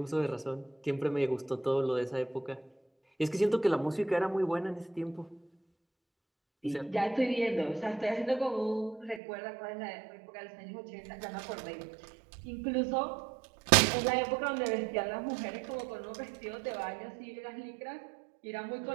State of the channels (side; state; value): left; drops out; at 9.2 s